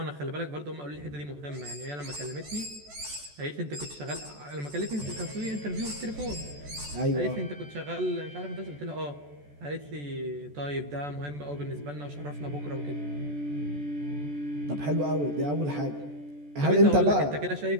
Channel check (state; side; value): late; left; 14 ms